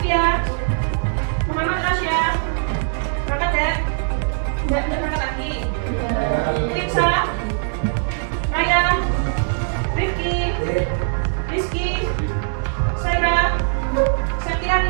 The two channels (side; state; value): left; silent; digital silence